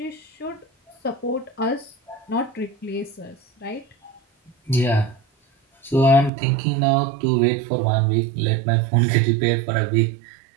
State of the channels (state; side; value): drops out; left; at 6.3 s